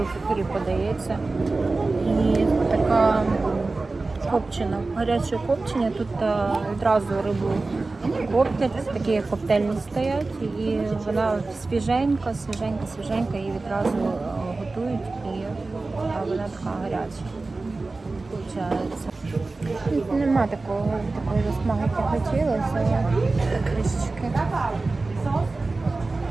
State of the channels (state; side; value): quieter; left; 3.5 dB